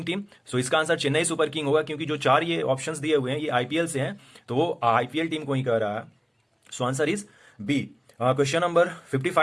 team? So इसका आंसर चेन्नई सुपर किंग होगा, क्योंकि जो चार ये ऑप्शंस दिए हुए हैं ये आईपीएल से हैं, तो वो आईपीएल टीम को ही कह रहा है। So answer is B. Question number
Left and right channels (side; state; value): both; identical; correlation 1.00